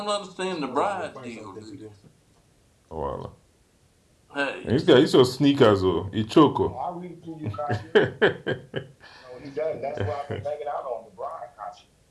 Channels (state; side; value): identical; both; correlation 1.00